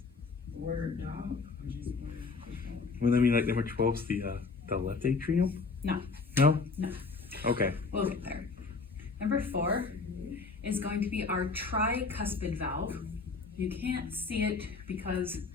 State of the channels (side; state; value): right; quieter; 4.3 dB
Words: Word, dog. Well, I mean, like number 12 is the left atrium? No. No? No. Okay. We'll get there. Number 4 is going to be our tricuspid valve. You can't see it because